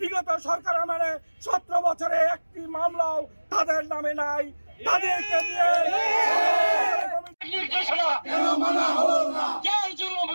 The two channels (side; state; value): both; inverted; correlation -1.00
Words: সরকার আমলে 17 বছরে একটি মামলাও তাদের নামে নাই। তাদেরকে দিয়ে